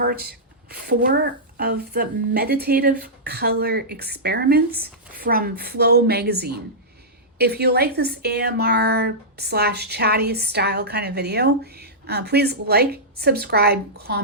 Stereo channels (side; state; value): both; normal; correlation -0.13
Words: 4 of the meditative color experiments from FlowMagazine. If you like this AMR / chatty style kind of video, please like, subscribe,